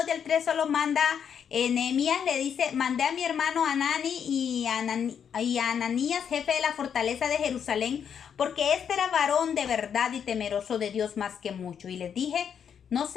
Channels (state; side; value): quieter; right; 7.8 dB